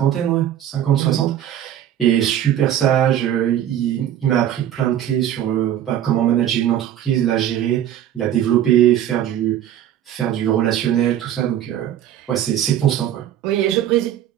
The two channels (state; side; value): quieter; left; 11.1 dB